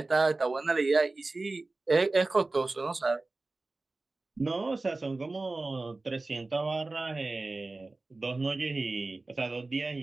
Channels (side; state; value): left; quieter; 3.3 dB